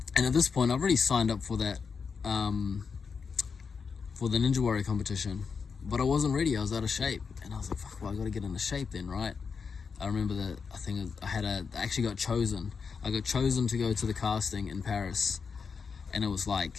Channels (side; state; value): right; quieter; 5.6 dB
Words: And at this point, I've already signed up for that, for the Ninja Warrior competition. But I wasn't ready, I was out of shape. And I was like, fuck, well, I gotta get into shape then, right? I remember that I actually got chosen. I got chosen to go to the casting in Paris. And it was like